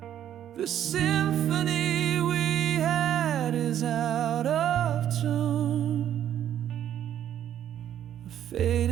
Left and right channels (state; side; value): quieter; left; 10.6 dB